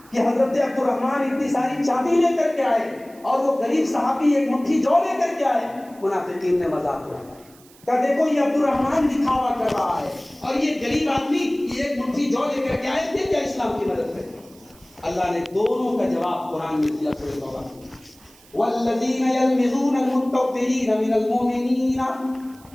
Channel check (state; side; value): noise; right; hiss, 26 dB below the sound